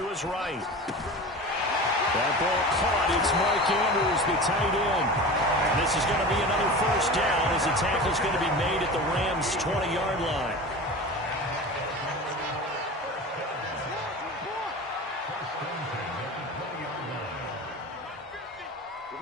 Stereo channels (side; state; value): both; normal; correlation 0.32